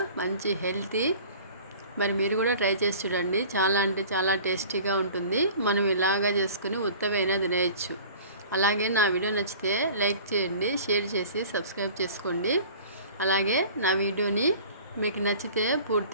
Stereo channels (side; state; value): both; inverted; correlation -0.44